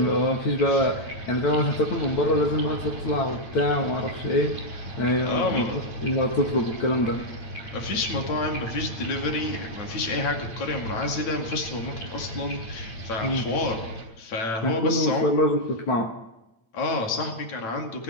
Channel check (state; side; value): late; right; 9.0 ms